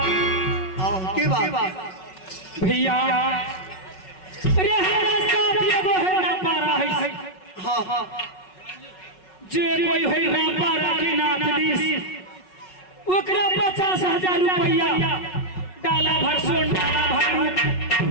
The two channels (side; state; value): right; late; 5.4 ms